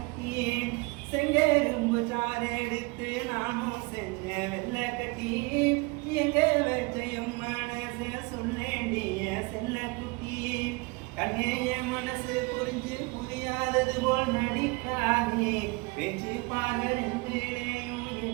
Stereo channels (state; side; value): quieter; left; 27.0 dB